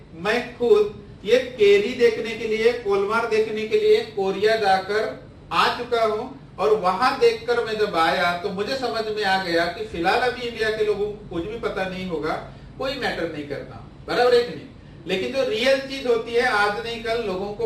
मैं खुद ये केरी देखने के लिए, कोलमार देखने के लिए कोरिया जाकर आ चुका हूं, और वहां देखकर मैं जब आया तो मुझे समझ में आ गया कि फिलहाल अभी इंडिया के लोगों को कुछ भी पता नहीं होगा, कोई मैटर नहीं करता, बराबर है कि नहीं? लेकिन जो रियल चीज होती है आज नहीं कल लोगों को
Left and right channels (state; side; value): identical; both; correlation 1.00